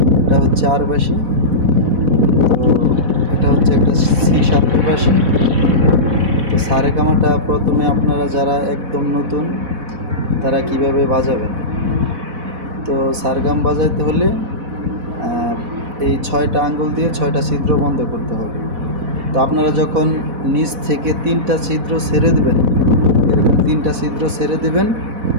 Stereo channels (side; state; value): left; late; 4.1 ms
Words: এটা হচ্ছে আরবাসি। তো এটা হচ্ছে একটা C7 বাঁশি। তো সারেগামাটা প্রথমে আপনারা যারা একদম নতুন তারা কিভাবে বাজাবেন, তো সারগাম বাজাইতে হলে এই 6টা আঙ্গুল দিয়ে 6টা ছিদ্র বন্ধ করতে হবে। তো আপনারা যখন নিচ থেকে 3টা ছিদ্র ছেড়ে দেবেন, এরকম 3টা ছিদ্র ছেড়ে দেবেন,